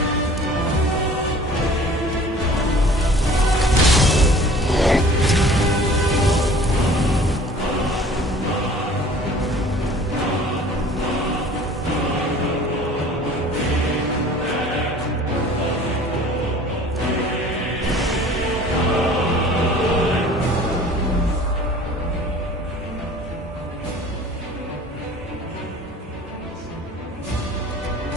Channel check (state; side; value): normal; both; correlation 0.48